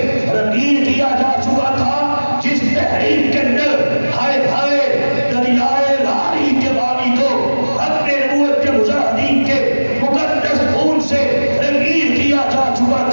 رنگین کیا جا چکا تھا، جس تحریک کے اندر ہائے ہائے دریائے راہی کے بانی کو ختم نبوت کے مجاہدین کے مقدس خون سے رنگین کیا جا چکا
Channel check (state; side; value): inverted; both; correlation -1.00